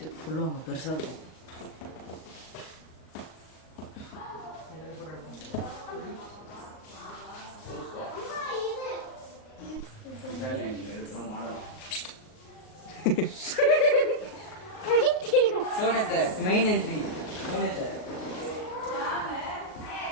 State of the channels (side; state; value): right; late; 38 ms